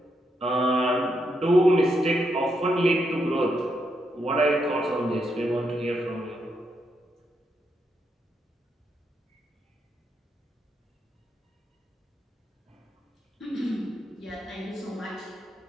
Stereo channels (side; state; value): both; normal; correlation 0.80